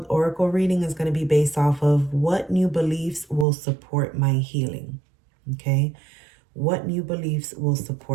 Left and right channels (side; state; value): left; drops out; at 3.5 s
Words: oracle reading is going to be based off of what new beliefs will support my healing. Okay, what new beliefs will